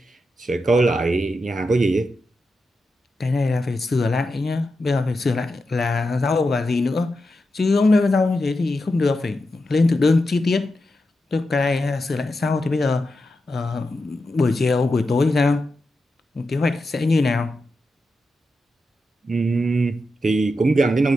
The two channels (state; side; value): normal; both; correlation 0.88